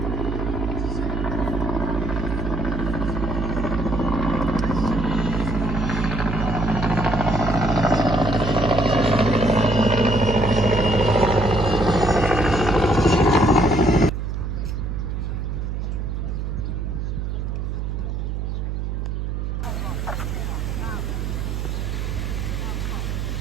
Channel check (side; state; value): right; noise; hum, 3 dB below the sound